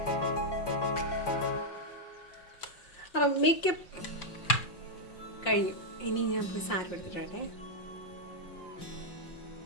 അപ്പം മേക്കപ്പ് കഴിഞ്ഞു. ഇനി ഞാൻ പോയി സാരി എടുത്തിട്ടെ.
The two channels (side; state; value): right; late; 5.6 ms